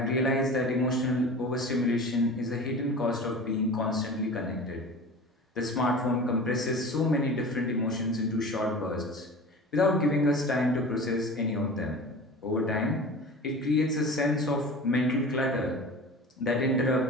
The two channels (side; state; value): both; normal; correlation 0.36